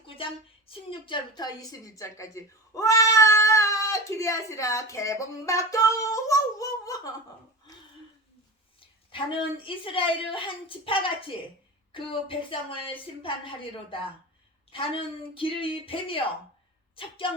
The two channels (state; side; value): normal; both; correlation 0.28